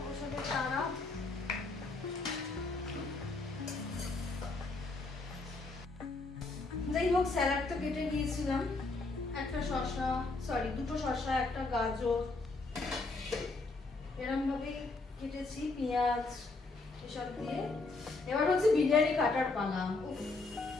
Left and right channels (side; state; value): right; quieter; 3.5 dB